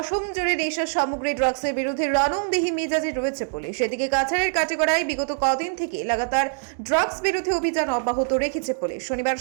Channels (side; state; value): left; silent; digital silence